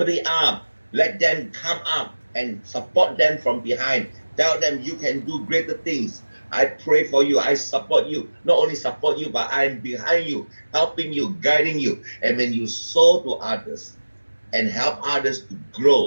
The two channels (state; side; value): inverted; both; correlation -1.00